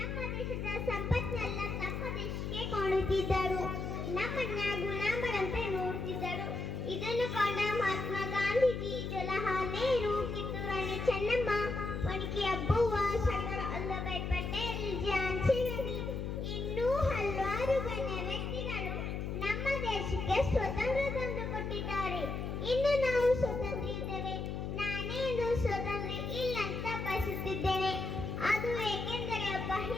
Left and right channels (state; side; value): noise; left; hum, 4 dB below the sound